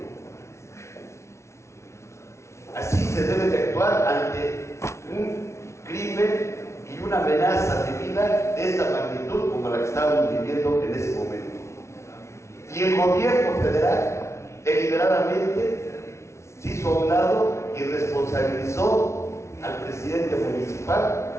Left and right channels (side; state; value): right; late; 0.13 ms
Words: Así se debe de actuar ante un crimen y una amenaza de vida de esta magnitud como la que estábamos viviendo en ese momento. Y el gobierno federal deliberadamente se hizo a un lado y responsabilizó al presidente municipal.